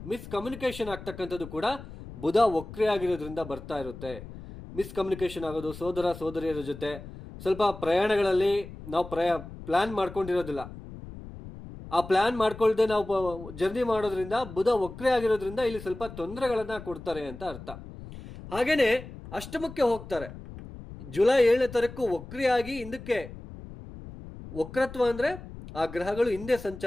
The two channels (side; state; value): left; noise; rumble, 13 dB below the sound